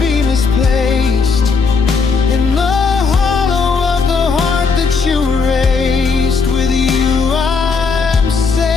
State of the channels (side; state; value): right; quieter; 4.8 dB